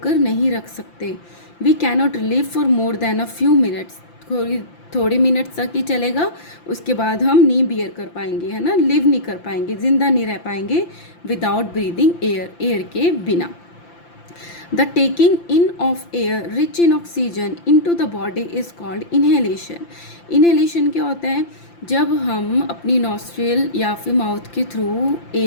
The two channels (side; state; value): right; late; 5.8 ms